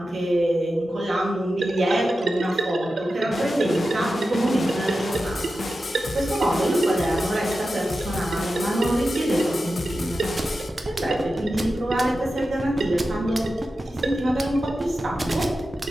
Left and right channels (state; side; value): normal; both; correlation 0.92